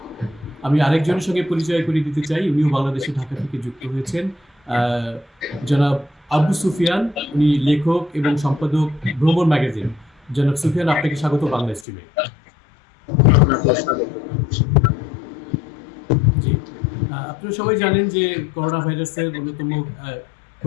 আমি আরেকজনের সঙ্গে পরিচয় করিয়ে দিতে চাই, উনিও বাংলাদেশে ঢাকা থেকে যুক্ত হয়েছেন, জনাব আবু সুফিয়ান। উনি লেখক এবং সম্পাদক ভ্রমণ ম্যাগাজিন। জনাব সুফিয়ান, আপনাকে স্বাগত বাংলা স্ট্রিমে। জি, আপনারা সবাই জানেন যে করোনা ভাইরাসের অন্যতম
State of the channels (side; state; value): right; drops out; at 11.9 s